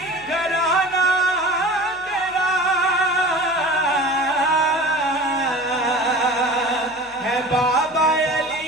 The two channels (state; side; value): noise; left; hum, 27 dB below the sound